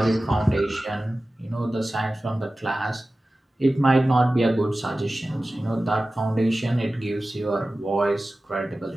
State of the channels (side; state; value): both; normal; correlation 0.96